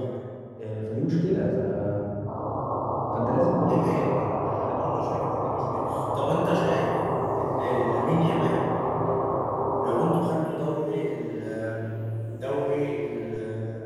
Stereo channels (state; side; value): identical; both; correlation 1.00